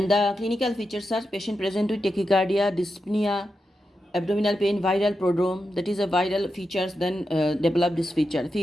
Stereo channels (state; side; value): normal; both; correlation 0.88